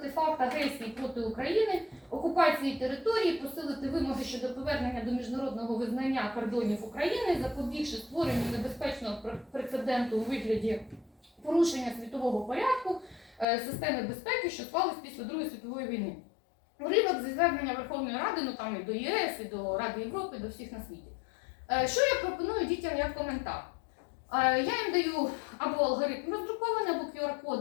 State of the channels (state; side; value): drops out; right; at 13.5 s